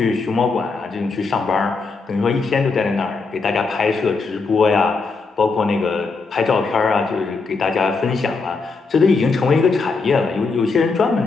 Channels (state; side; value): quieter; right; 4.3 dB